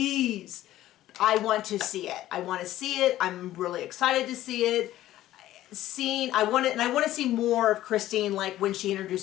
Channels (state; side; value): quieter; right; 14.2 dB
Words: I want to see it. I want to see it. I'm really excited to see it. I want to see more of Christine, like when she